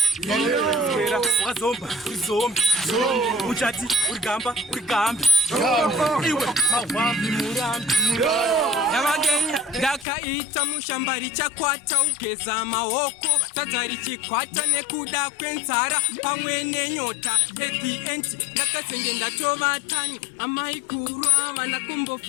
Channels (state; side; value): drops out; right; at 10.1 s